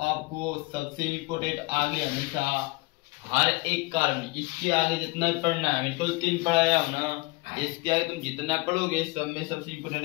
सबसे इम्पोर्टेंट आगे हमेशा हर एक कार्बन, इसके आगे जितना भी पढ़ना है, बिल्कुल 3 पढ़ाया हो ना, इसके आगे तुम जितना पढ़ोगे सब में सबसे इम्पोर्टेंट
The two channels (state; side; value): quieter; right; 24.4 dB